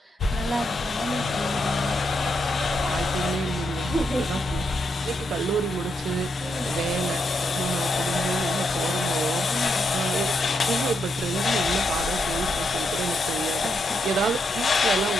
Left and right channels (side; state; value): both; normal; correlation 0.80